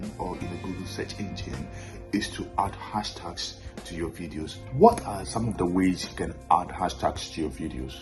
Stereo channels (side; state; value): both; identical; correlation 1.00